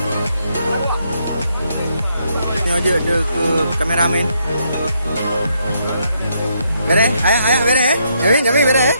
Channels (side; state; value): both; inverted; correlation -0.75